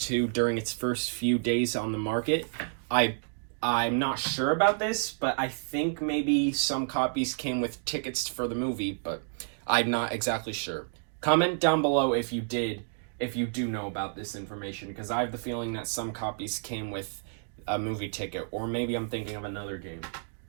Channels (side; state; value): left; silent; digital silence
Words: during its first few days on the market, I'm not sure about this, but I think maybe some copies came with tickets for the movie, but I'm not exactly sure. Comment down below if you do know about this information, because I have the feeling that some copies came with a movie ticket, or maybe I'm thinking of another game.